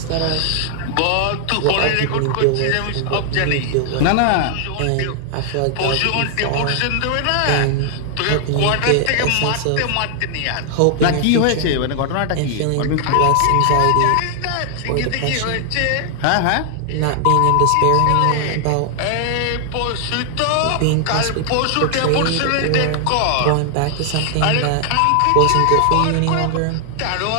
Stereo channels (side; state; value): both; different; correlation 0.00